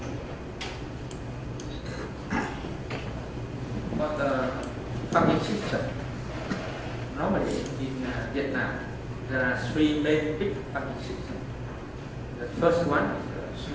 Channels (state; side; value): identical; both; correlation 1.00